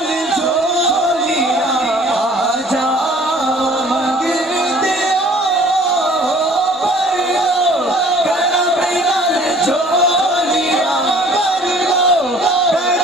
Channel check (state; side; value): normal; both; correlation 0.52